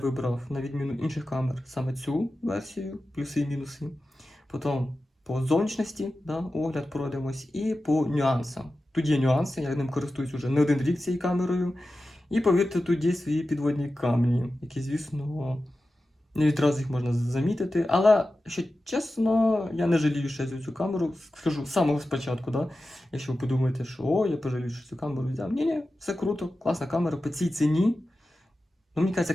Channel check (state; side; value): normal; both; correlation 0.93